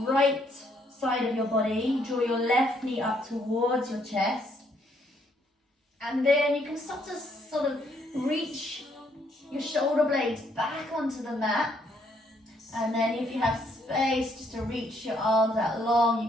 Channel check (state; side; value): normal; both; correlation 0.70